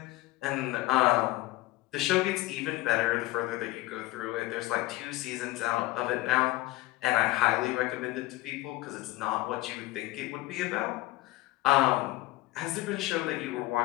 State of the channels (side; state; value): right; quieter; 18.4 dB